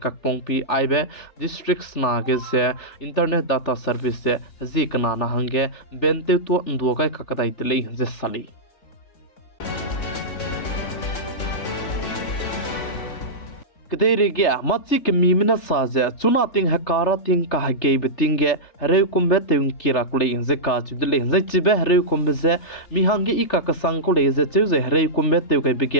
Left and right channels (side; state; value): right; late; 3.3 ms